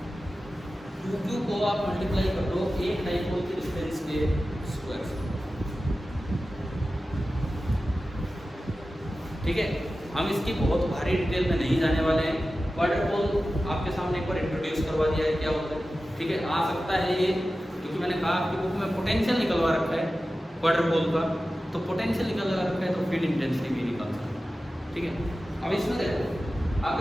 2q को आप मल्टीप्लाई कर दो एक डाइपोल की डिस्टेंस के स्क्वायर से। ठीक है, हम इसकी बहुत भारी डिटेल में नहीं जाने वाले हैं। क्वाड्रपोल आपके सामने एक बार इंट्रोड्यूस करवा दिया है क्या होता है। ठीक है, आ सकता है ये, क्योंकि मैंने कहा आपकी बुक में पोटेंशियल निकलवा रखा है क्वाड्रपोल का, तो पोटेंशियल निकल रखा है तो फील्ड इंटेंसिटी भी निकल सकता है। ठीक है, अब इसमें देखो,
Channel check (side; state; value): both; normal; correlation 0.94